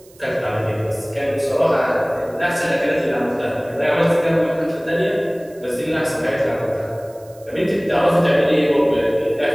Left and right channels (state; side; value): noise; right; hiss, 27 dB below the sound